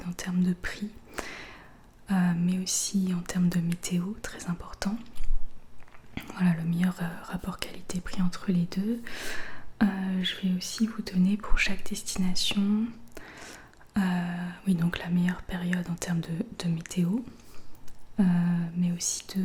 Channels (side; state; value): both; identical; correlation 1.00